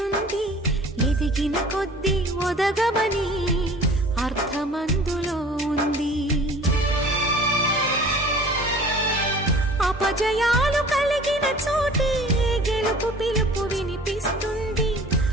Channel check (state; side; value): normal; both; correlation 0.47